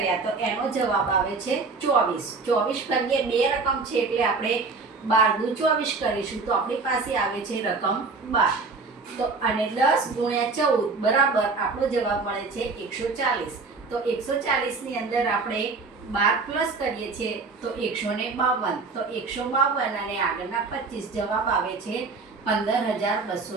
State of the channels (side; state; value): left; quieter; 4.2 dB